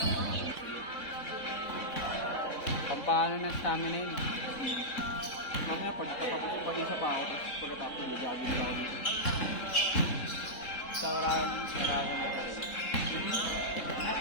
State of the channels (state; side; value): late; right; 3.7 ms